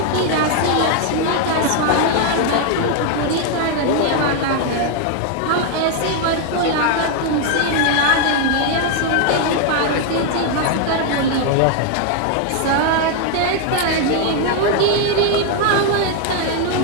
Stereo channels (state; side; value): different; both; correlation 0.00